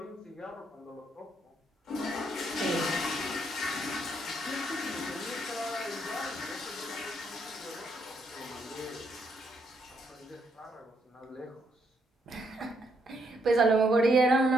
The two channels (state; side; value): normal; both; correlation 0.74